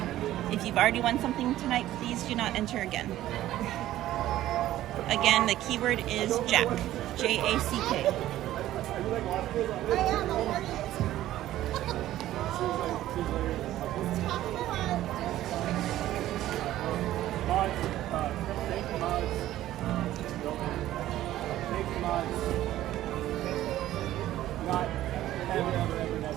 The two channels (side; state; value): left; quieter; 14.0 dB